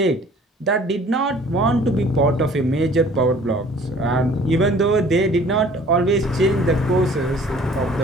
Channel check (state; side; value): normal; both; correlation 0.52